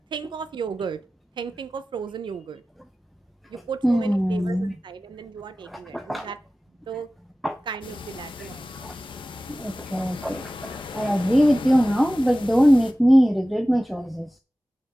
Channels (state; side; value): normal; both; correlation 0.96